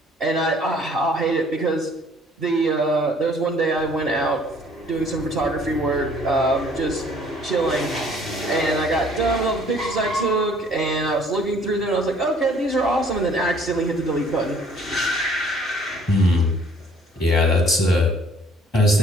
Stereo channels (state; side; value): normal; both; correlation 0.57